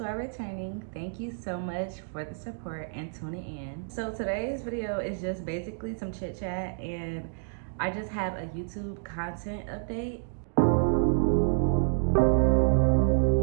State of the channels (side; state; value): left; silent; digital silence